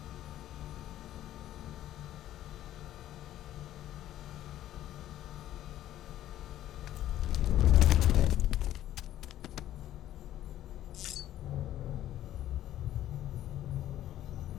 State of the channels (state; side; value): quieter; right; 12.8 dB